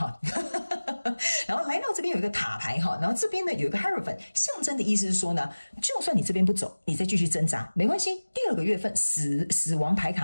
然後來到這邊有一個塔牌然後這邊呢有一個 Hierophant， 象徵的意思是說呢，就算你這邊不走，你再繼續掙扎沒關係。第2個月份死亡牌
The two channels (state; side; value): inverted; both; correlation -1.00